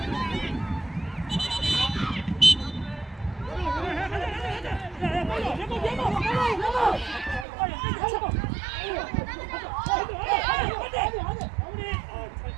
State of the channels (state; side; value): drops out; left; at 7.5 s